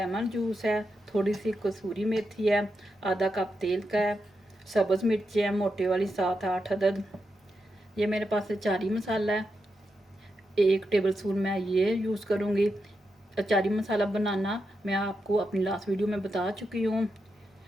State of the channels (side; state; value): both; normal; correlation 0.86